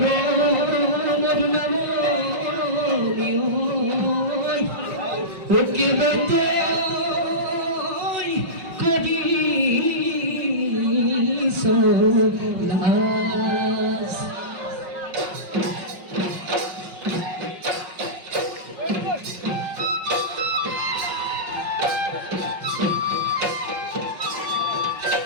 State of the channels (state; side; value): late; left; 5.4 ms